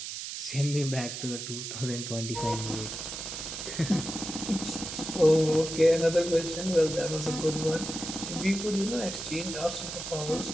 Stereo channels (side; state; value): right; noise; hiss, 7 dB below the sound